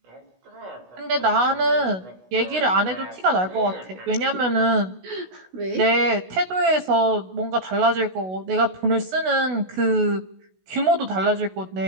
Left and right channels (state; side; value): late; left; 16 ms